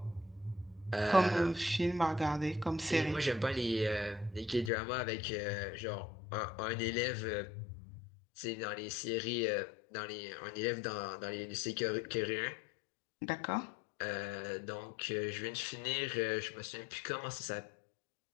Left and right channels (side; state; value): right; drops out; at 4.7 s